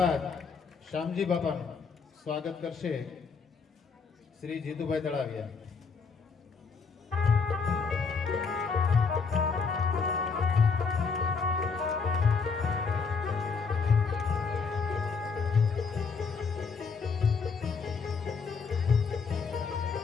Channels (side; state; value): right; quieter; 5.2 dB